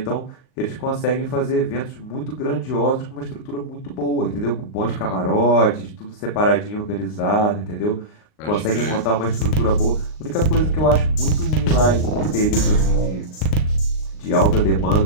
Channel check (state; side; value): late; right; 39 ms